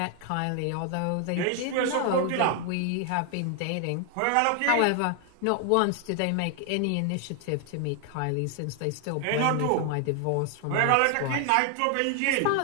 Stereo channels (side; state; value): both; different; correlation 0.00